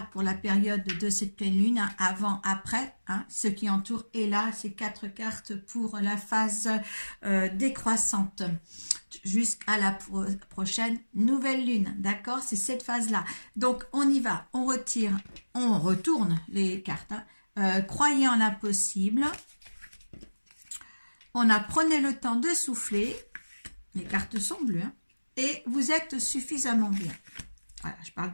pour la période de cette pleine lune, avant, après, ce qui entoure, et là, ces 4 cartes pour la phase décroissante jusqu'à la prochaine nouvelle lune, d'accord? C'est cette phase-là. Donc, on y va, on retourne les cartes. Croyez en l'impossible. Prenez le temps de souffler. Les cartes sont bleues. Et vous êtes suffisamment bien. Voilà, je parle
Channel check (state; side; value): inverted; both; correlation -1.00